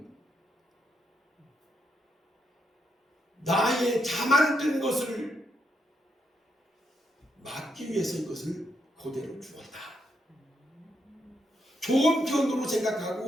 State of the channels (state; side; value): normal; both; correlation 0.79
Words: 나의 자만든 것을 막기 위해서 이것을 그대로 주었다. 좋은 편으로